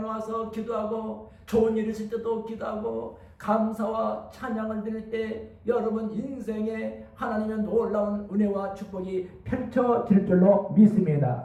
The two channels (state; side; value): identical; both; correlation 1.00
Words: 기도하고, 좋은 일 있을 때도 기도하고, 감사와 찬양을 드릴 때 여러분 인생에 하나님의 놀라운 은혜와 축복이 펼쳐질 줄로